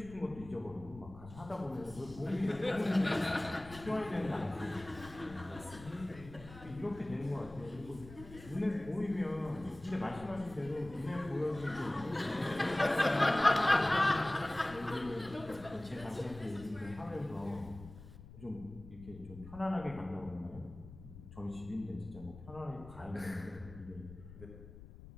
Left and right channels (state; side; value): noise; left; rumble, 16 dB below the sound